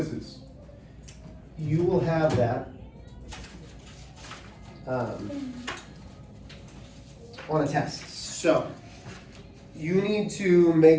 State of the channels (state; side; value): identical; both; correlation 1.00